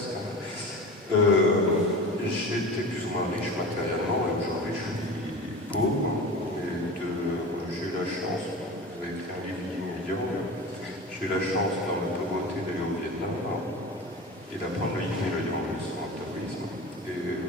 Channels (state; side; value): normal; both; correlation 0.33